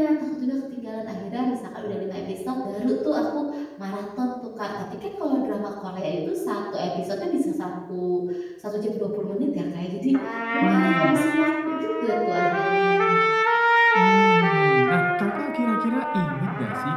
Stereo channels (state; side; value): identical; both; correlation 1.00